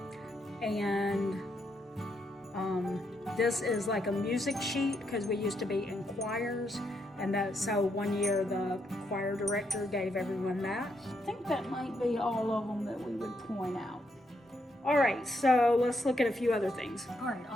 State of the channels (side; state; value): both; normal; correlation 0.78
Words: And this is like a music sheet, because we used to be in choirs. So one year the choir director gave everyone that. I think that might be all of them that we would point out. All right, so let's look at a few other things. All right,